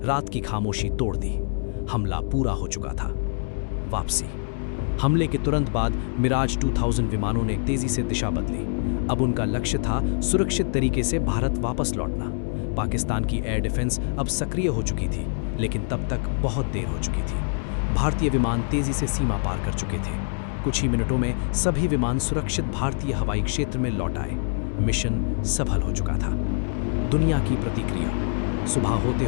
रात की खामोशी तोड़ दी। हमला पूरा हो चुका था। वापसी। हमले के तुरंत बाद मिराज 2000 विमानों ने तेजी से दिशा बदली। अब उनका लक्ष्य था सुरक्षित तरीके से भारत वापस लौटना। पाकिस्तान की एयर डिफेंस अब सक्रिय हो चुकी थी, लेकिन तब तक बहुत देर हो चुकी थी। भारतीय विमान तेजी से सीमा पार कर चुके थे। कुछ ही मिनटों में सभी विमान सुरक्षित भारतीय हवाई क्षेत्र में लौट आए। मिशन सफल हो चुका था। दुनिया की प्रतिक्रिया। सुबह होते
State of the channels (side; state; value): right; silent; digital silence